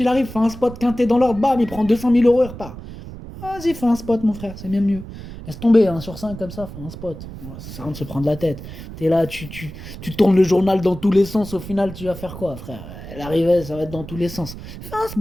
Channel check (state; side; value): noise; right; rumble, 12 dB below the sound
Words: il arrive, fait un spot quinté dans l'ordre, bam, il prend 200 000 euros et repart. Vas-y, fais un spot, mon frère, c'est bien mieux. Laisse tomber, hein, sur 5 comme ça, fais un spot. Ouais, ça sert à rien de se prendre la tête. T'es là, tu tournes le journal dans tous les sens, au final, tu vas faire quoi, frère? L'arrivée, ça va être dans tous les sens. Fais un